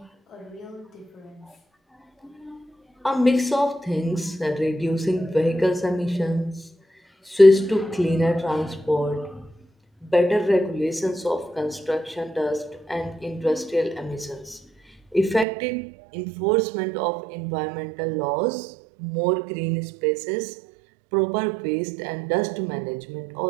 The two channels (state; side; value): drops out; left; at 15.5 s